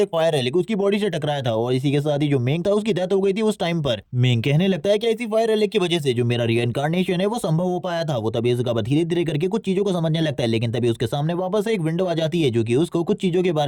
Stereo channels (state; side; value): identical; both; correlation 1.00